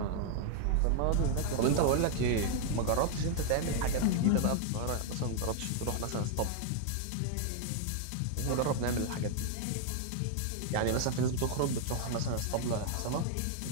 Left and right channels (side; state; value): both; different; correlation 0.00